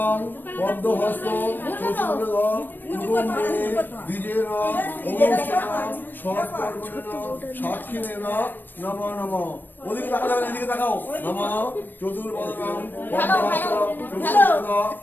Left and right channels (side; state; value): right; late; 0.092 ms